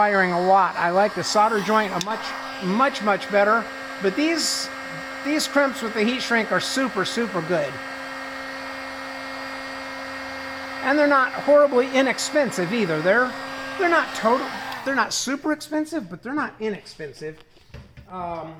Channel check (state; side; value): identical; both; correlation 1.00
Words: a lot. I like the solder joint much better. But these crimps with the heat shrink are super good. And they're not horribly inexpensive either. They're not super expensive, but they're not inexpensive.